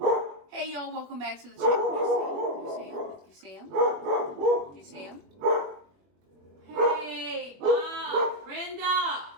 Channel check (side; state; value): left; late; 21 ms